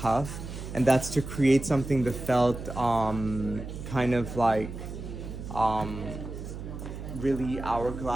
And that's to create something that felt kind of like really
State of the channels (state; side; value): noise; right; hum, 9 dB below the sound